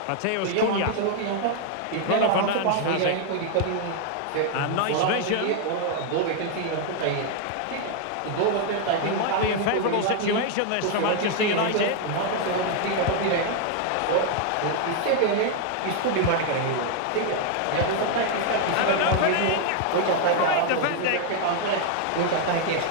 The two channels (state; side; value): different; both; correlation 0.00